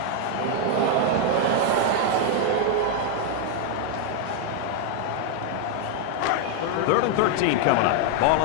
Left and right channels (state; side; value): different; both; correlation 0.00